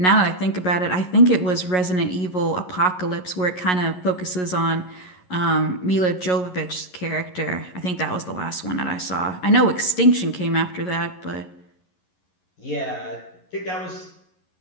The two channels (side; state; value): right; late; 11 ms